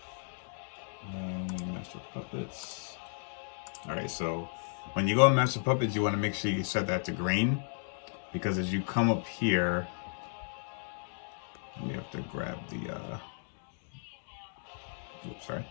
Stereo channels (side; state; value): right; silent; digital silence